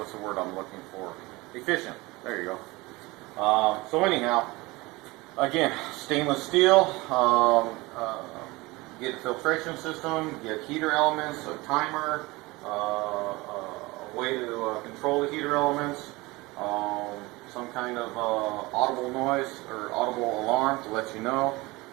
the word I'm looking for? Efficient. There you go. So anyhow, again, stainless steel. Get a filtration system, get heater elements, a timer, a way to control the heater elements, some kind of audible noise or audible alarm to let you know,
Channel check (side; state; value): left; quieter; 22.3 dB